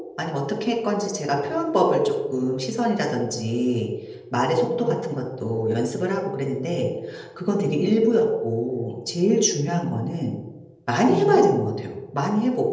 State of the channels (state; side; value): identical; both; correlation 1.00